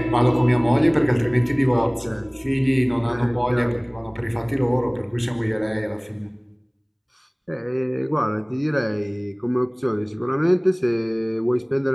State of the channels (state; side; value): identical; both; correlation 1.00